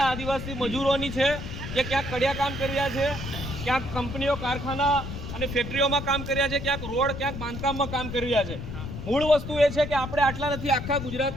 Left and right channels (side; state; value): left; noise; rumble, 7 dB below the sound